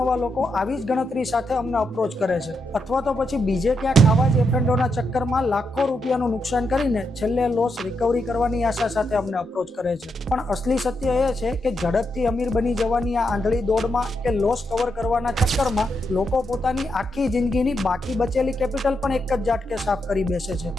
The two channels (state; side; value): normal; both; correlation 0.82